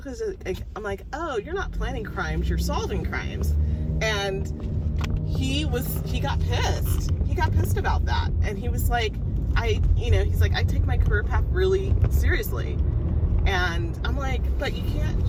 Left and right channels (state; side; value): identical; both; correlation 1.00